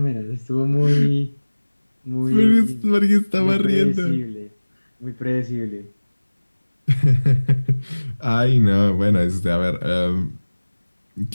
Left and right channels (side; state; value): both; inverted; correlation -1.00